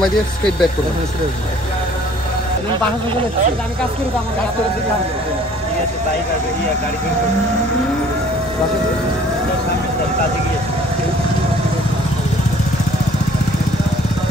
দিয়ে স্ট্রেট ব্যাক করবেন। আমি কাজ করি, আমার কাজ করে দিতে হবে। ঠিক আছে, তাই করবে। গাড়ি বের করবে, বাসা কাজে গিয়েছে।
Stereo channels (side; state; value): both; normal; correlation 0.55